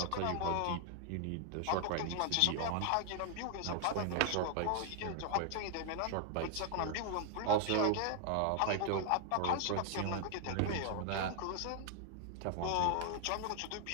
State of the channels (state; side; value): different; both; correlation 0.00